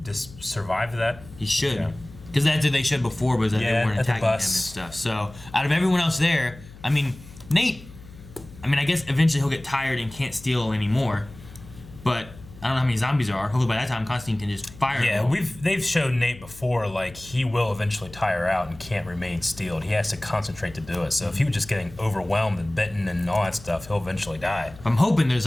just survive that. He should, because that's what they should before, was that they weren't attacking him and stuff. So out of everyone else there, I mean, Nate. I mean, I guess eventually he'll get tired and can't steal anymore, but I don't know how many zombies there are. Hopefully by that time Constantine can just fire. Yeah, they've shown Nate before, like, he will eventually tire out and can't remain steeled. He has to concentrate to do it. So if he was just getting overwhelmed and bitten and all that stuff, he'll eventually die. I'm hoping there's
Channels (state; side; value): noise; left; hum, 19 dB below the sound